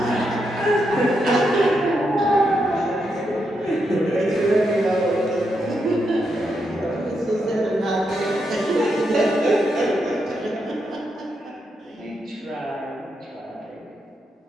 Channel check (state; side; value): normal; both; correlation 0.82